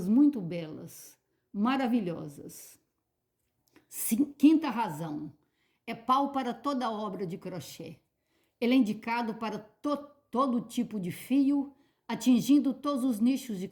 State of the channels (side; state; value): both; identical; correlation 1.00